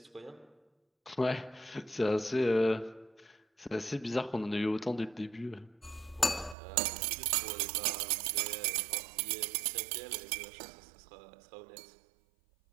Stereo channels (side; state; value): left; drops out; at 6.6 s